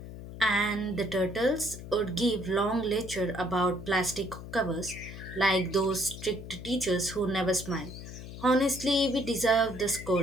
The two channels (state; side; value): noise; left; hum, 12 dB below the sound